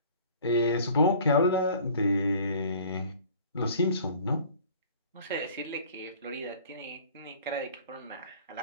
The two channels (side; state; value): both; inverted; correlation -0.49